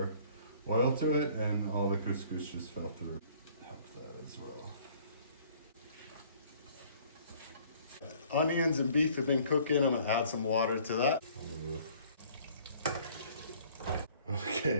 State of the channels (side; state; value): both; inverted; correlation -0.55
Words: oil to it, and all the couscous just fell through. Help that as well. Onions and beef have been cooking. I'm gonna add some water to that.